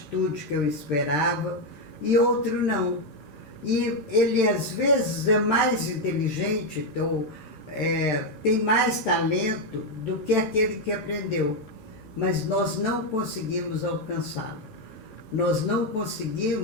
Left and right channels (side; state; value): right; late; 13 ms